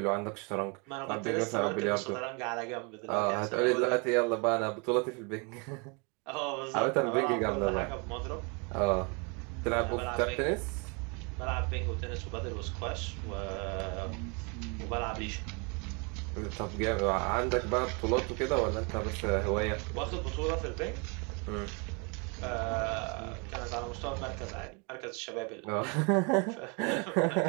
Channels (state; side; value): quieter; left; 32.6 dB